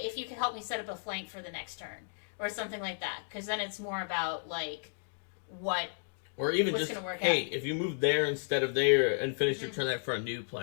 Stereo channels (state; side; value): silent; right; digital silence